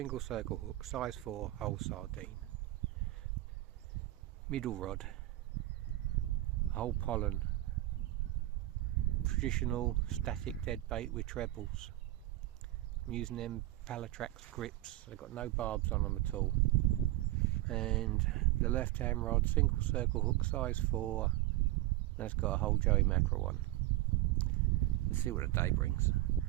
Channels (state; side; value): quieter; left; 17.0 dB